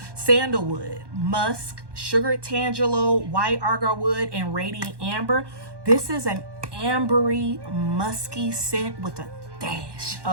Sandalwood, Musk, Sugared Tangelo, White Agarwood, and Radiant Amber. This is an ambery, musky scent with a dash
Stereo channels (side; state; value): left; late; 1.1 ms